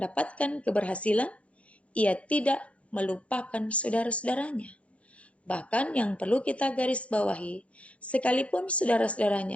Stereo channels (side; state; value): right; late; 0.063 ms